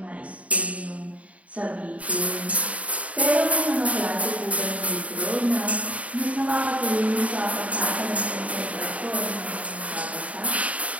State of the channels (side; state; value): left; late; 0.067 ms